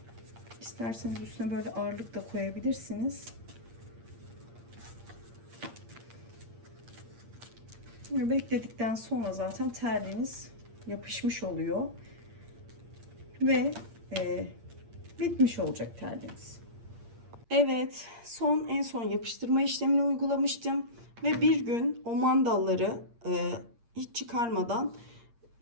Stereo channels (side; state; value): left; late; 8.6 ms